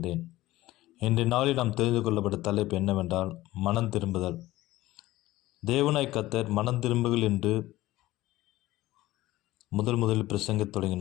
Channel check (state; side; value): quieter; right; 17.0 dB